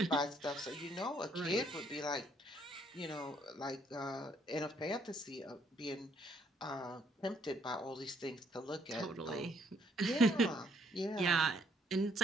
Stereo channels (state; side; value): normal; both; correlation 0.68